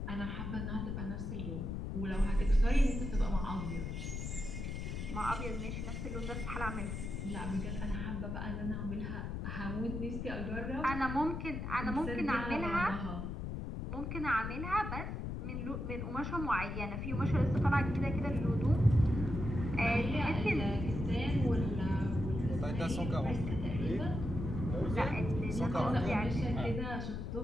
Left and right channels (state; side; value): noise; left; rumble, 4 dB below the sound